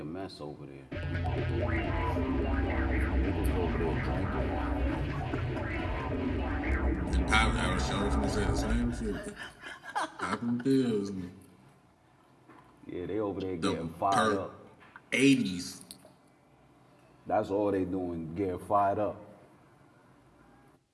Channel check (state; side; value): identical; both; correlation 1.00